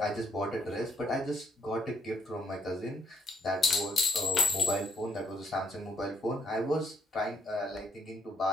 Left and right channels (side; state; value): both; normal; correlation 0.72